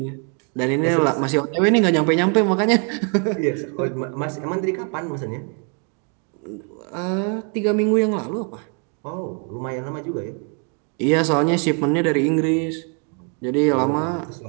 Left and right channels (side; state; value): left; quieter; 38.2 dB